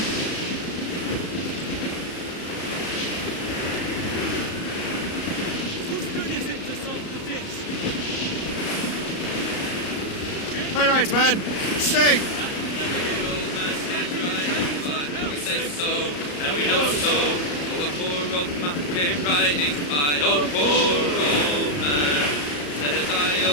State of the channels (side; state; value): right; late; 34 ms